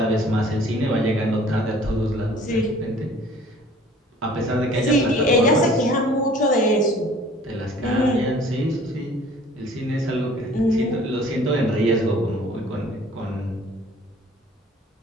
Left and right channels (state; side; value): normal; both; correlation 0.51